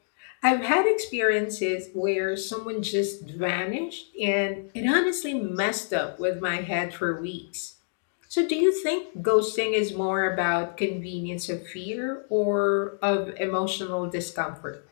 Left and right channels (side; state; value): right; silent; digital silence